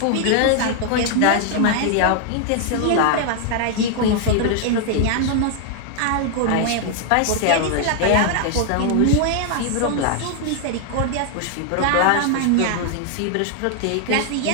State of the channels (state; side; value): different; both; correlation 0.00